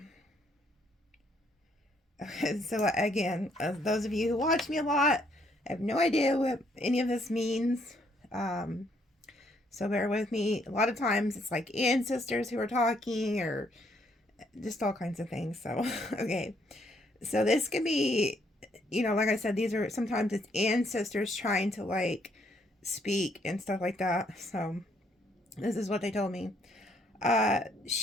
Okay, so again, as those of you who watch me a lot, I have no idea what any of this means. So bear with me. A lot of times it's like ancestors who are talking or just all kinds of things. So, okay. So this could be, like I said, these are sometimes it's ancestors trying to like speak and stuff like that. So this is what they told me.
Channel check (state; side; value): normal; both; correlation 0.69